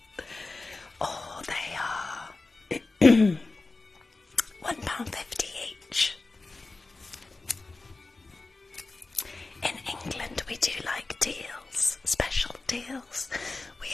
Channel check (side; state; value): right; quieter; 3.5 dB